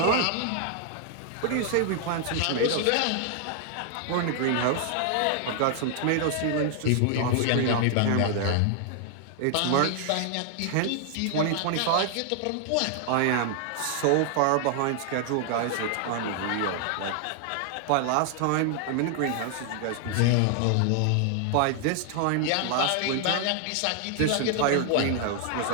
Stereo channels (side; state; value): both; different; correlation 0.00